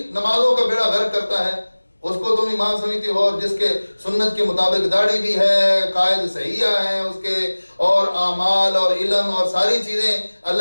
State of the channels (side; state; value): both; inverted; correlation -1.00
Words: نمازوں کا بیڑا غرق کرتا ہے، اس کو تم امام سمجھتے ہو، اور جس کے سنت کے مطابق داڑھی بھی ہے، قائد صحیحہ ہیں اس کے، اور اعمال اور علم اور ساری چیزیں